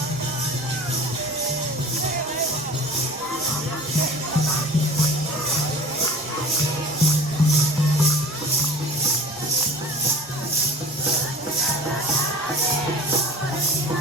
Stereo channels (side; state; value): both; normal; correlation 0.41